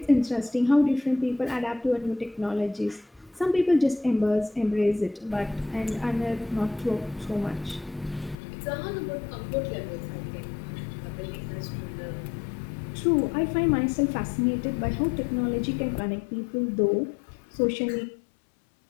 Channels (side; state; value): right; drops out; at 8.3 s